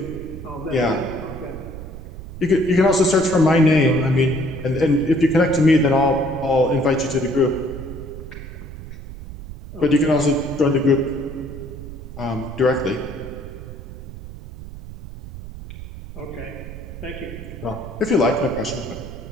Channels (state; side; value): noise; right; rumble, 12 dB below the sound